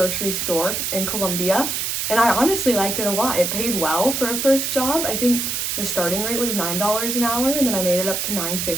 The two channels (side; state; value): right; noise; hiss, 1 dB below the sound